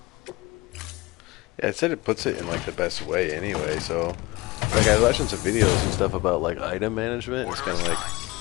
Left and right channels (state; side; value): quieter; right; 22.2 dB